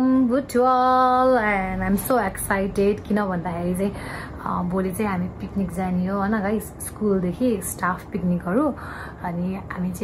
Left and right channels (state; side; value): identical; both; correlation 1.00